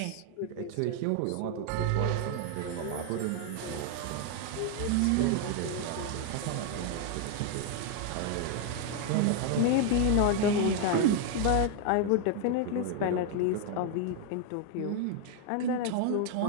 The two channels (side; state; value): both; different; correlation 0.01